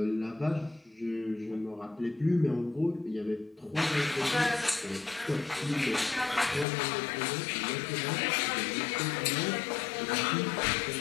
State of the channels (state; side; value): drops out; right; at 6.7 s